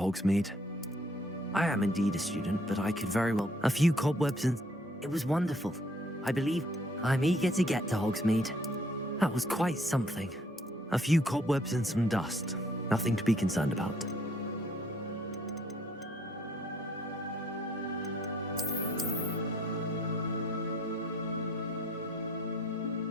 I am indeed a student, but I could very well... A few cobwebs and... It was wonderful. I believe I'm eager to get to Hogsmeade. That was quite something. A few cobwebs and some dust. Nothing to be concerned about.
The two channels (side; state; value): both; normal; correlation 0.63